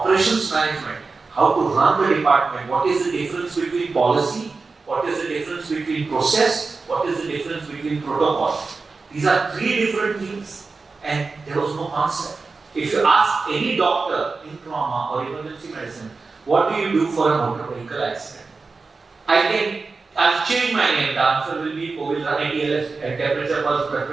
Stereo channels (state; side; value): quieter; left; 4.2 dB